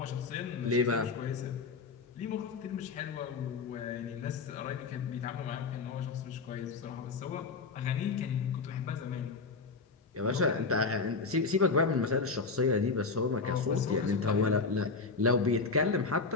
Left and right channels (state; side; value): quieter; right; 4.4 dB